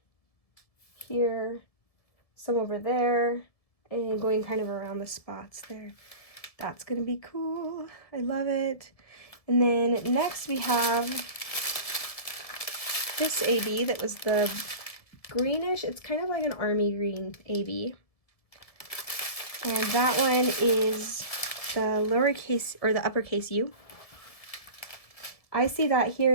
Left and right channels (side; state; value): right; late; 1.7 ms